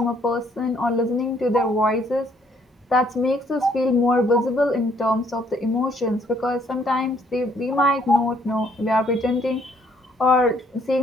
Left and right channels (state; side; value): normal; both; correlation 0.66